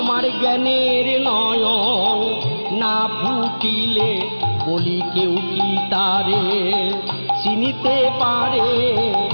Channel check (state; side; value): inverted; both; correlation -1.00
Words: জ্ঞানের নয়ন না ফুটিলে বলি কেউ কি তারে চিনিতে পারে,